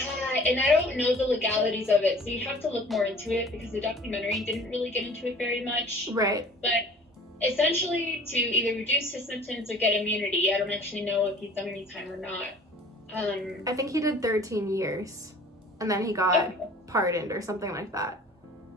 and I don't know the legalities of it, so you have to look more into it, because the documentary didn't really get into it very much. Right. But essentially, to either reduce his sentence or get immunity, I don't actually know if he's done any time or not. I think he did 13 years, and then he got pardoned or something like that.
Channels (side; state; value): both; normal; correlation 0.47